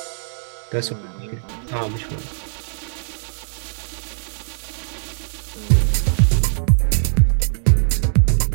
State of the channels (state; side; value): silent; left; digital silence